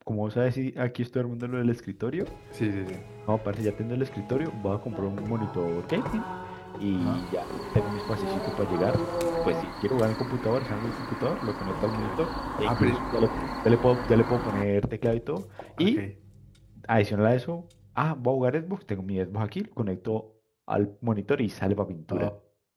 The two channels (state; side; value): identical; both; correlation 1.00